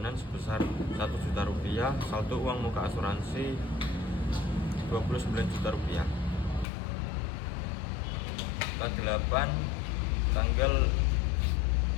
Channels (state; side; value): drops out; right; at 6.7 s